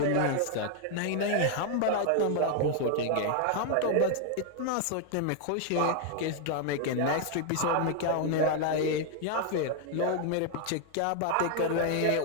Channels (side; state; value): both; different; correlation 0.00